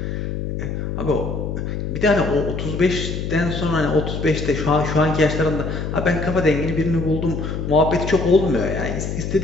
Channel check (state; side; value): noise; left; hum, 4 dB below the sound